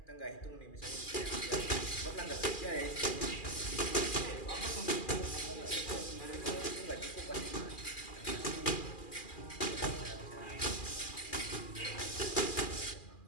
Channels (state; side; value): late; right; 2.4 ms